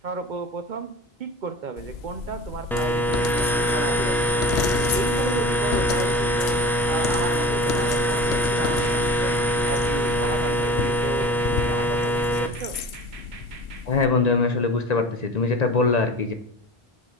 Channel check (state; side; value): normal; both; correlation 0.36